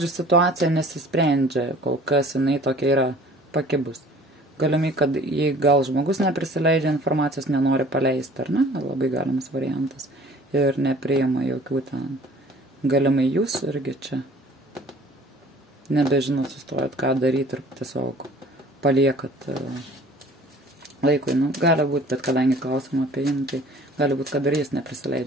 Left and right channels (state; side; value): normal; both; correlation 0.50